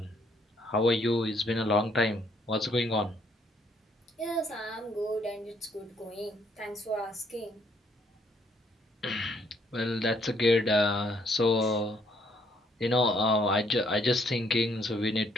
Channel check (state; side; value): normal; both; correlation 0.68